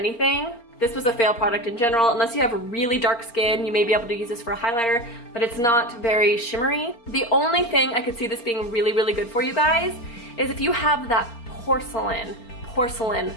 This was a fail product in general. Unless you have really dark skin, you may be able to use this for a highlighter, but it's not very shimmery. The only thing I could see this being really, really good for you guys is if you have that porcelain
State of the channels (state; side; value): late; right; 4.3 ms